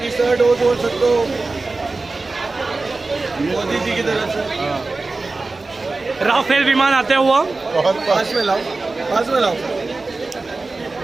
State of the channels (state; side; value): quieter; left; 3.5 dB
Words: डोज बोल सकते हो, मोदी जी की तरफ से। राफेल विमान आते हुआ। बहुत पास में लाओ, पास में लाओ।